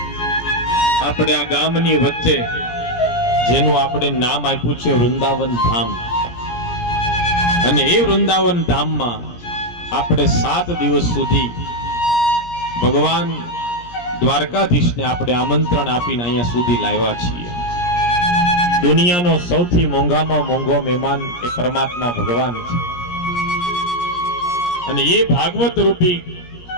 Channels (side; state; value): right; late; 17 ms